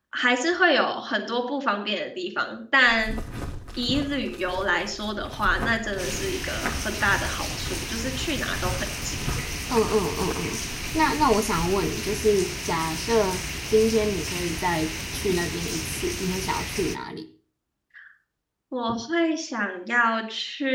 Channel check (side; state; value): both; identical; correlation 1.00